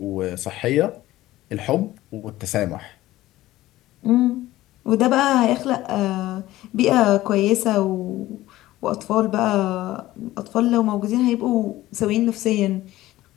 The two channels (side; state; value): right; quieter; 16.2 dB